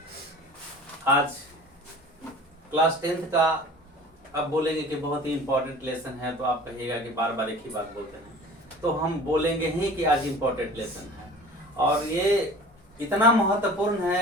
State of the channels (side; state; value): both; normal; correlation 0.42